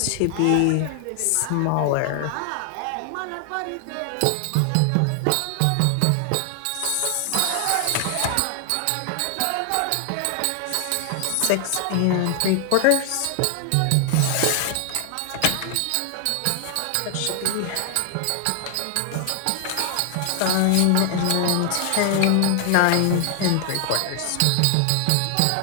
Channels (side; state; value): both; different; correlation 0.00